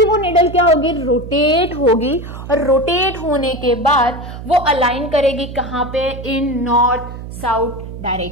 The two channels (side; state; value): right; noise; hum, 11 dB below the sound